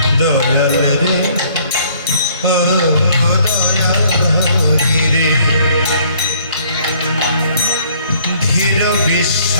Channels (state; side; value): inverted; both; correlation -0.60